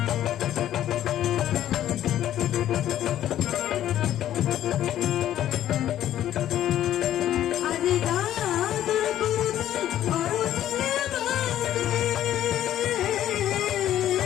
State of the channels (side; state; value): right; quieter; 12.0 dB